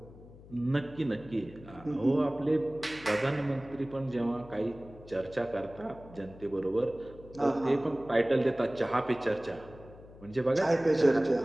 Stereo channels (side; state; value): left; noise; hum, 20 dB below the sound